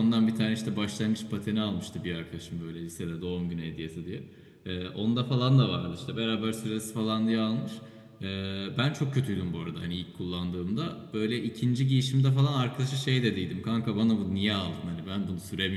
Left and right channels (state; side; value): identical; both; correlation 1.00